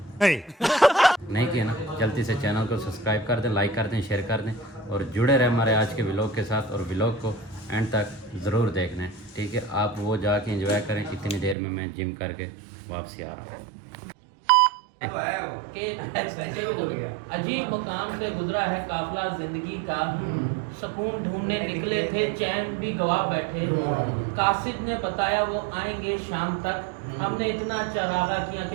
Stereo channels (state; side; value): drops out; left; at 11.6 s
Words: नहीं किया ना, जल्दी से चैनल को सब्सक्राइब कर दें, लाइक कर दें, शेयर कर दें और जुड़े रहें हमारे आज के व्लॉग के साथ। और व्लॉग को एंड तक ज़रूर देखना है, ठीक है। आप वो जाके एंजॉय करें। इतनी देर में मैं जिम करके वापसी आ रहा हूँ। अजीब मुकाम से गुजरा है काफिला जिंदगी का, सुकून ढूंढने निकले थे, चैन भी गवा बैठे। कासिद ने बताया वो आएंगे शाम तक, हमने इतना चरागा किया